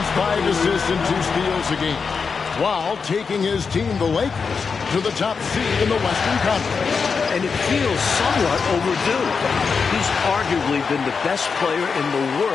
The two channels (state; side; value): quieter; right; 5.4 dB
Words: 5 assists, and 2 steals a game, while taking his team, the Lakers, to the top seed in the Western Conference. And it feels somewhat overdue. He's arguably been the best player in the